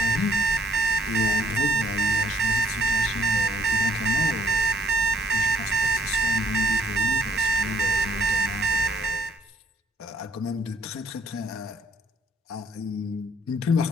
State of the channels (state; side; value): normal; both; correlation 0.68